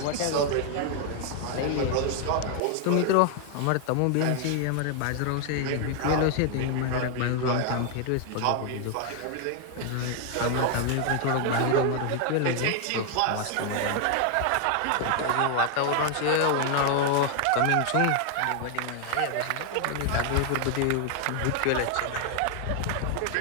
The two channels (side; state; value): both; different; correlation 0.00